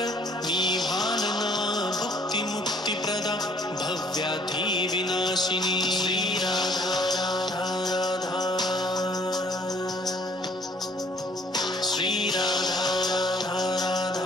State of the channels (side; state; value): both; normal; correlation 0.59